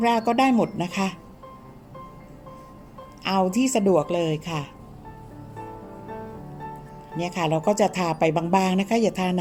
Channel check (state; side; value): identical; both; correlation 1.00